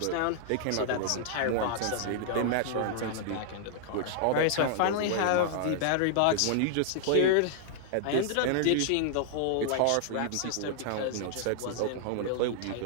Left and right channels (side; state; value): both; different; correlation -0.01